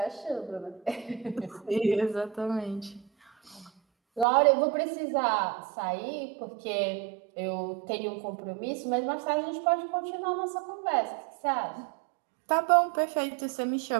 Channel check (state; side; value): drops out; left; at 4.2 s